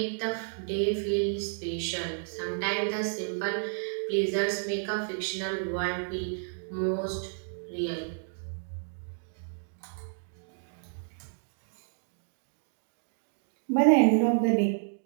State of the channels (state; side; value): silent; left; digital silence